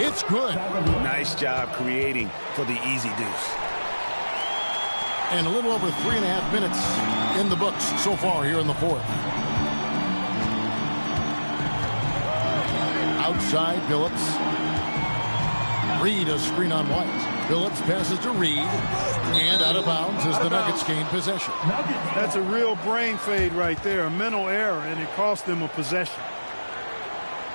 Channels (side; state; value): both; inverted; correlation -1.00